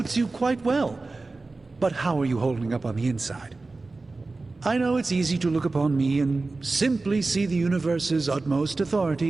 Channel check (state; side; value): quieter; left; 3.5 dB